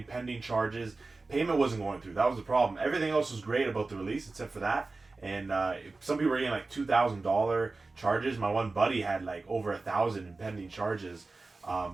pending charges. Payment wasn't going through. That was the problem. Everything else was great about the release except for that. And some people were getting like $2,000 charges. My one buddy had like over 1,000 in pending charges.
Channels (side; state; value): left; quieter; 3.6 dB